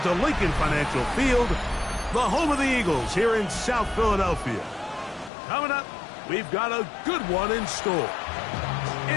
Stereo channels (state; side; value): drops out; right; at 5.3 s